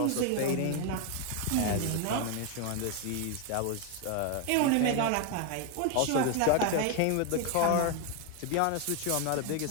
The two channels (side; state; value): both; different; correlation 0.01